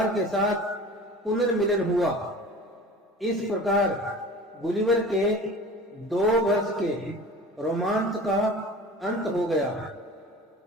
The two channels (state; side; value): normal; both; correlation 0.39